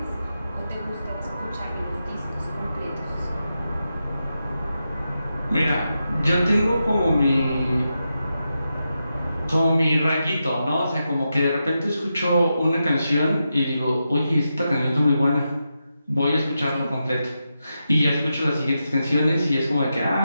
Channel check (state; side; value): inverted; both; correlation -0.88